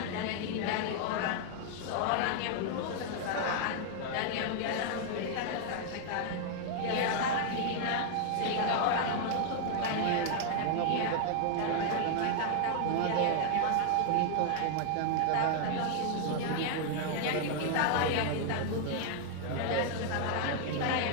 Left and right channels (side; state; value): both; different; correlation 0.00